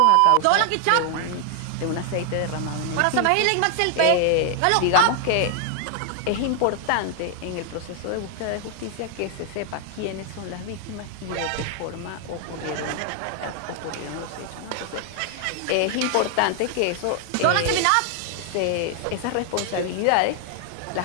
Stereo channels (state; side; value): different; both; correlation 0.00